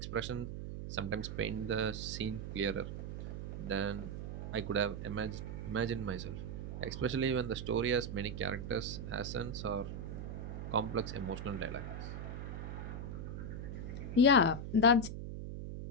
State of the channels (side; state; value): right; noise; hum, 6 dB below the sound